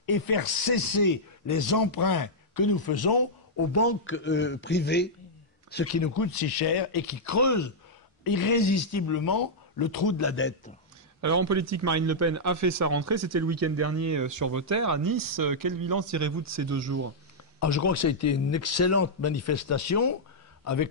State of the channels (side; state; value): both; normal; correlation -0.07